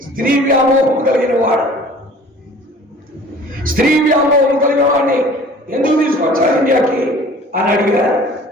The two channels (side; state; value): both; normal; correlation 0.48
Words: స్త్రీ వ్యామోహం కలిగిన వాడు, స్త్రీ వ్యామోహం కలిగిన వాడిని ఎందుకు తీసుకొచ్చారు ఇండియాకి అని అడిగారు.